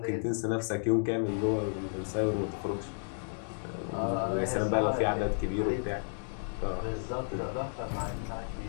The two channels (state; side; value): silent; right; digital silence